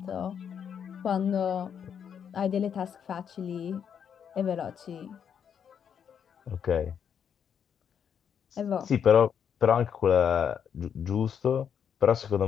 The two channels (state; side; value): quieter; right; 7.9 dB